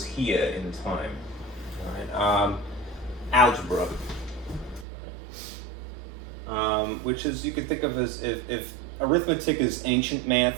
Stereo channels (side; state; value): left; drops out; at 4.9 s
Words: here in time. All right. Algebra, which is, you could think of as if arithmetic is ancient